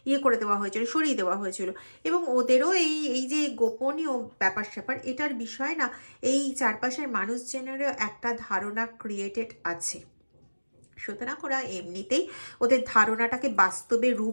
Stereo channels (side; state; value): both; inverted; correlation -1.00